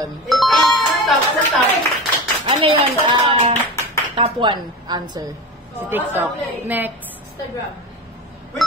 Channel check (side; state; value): both; normal; correlation 0.27